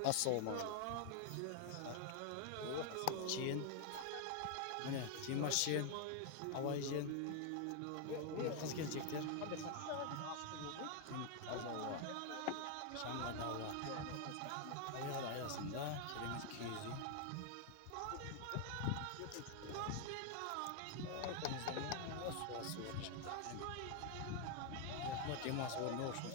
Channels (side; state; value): both; different; correlation 0.00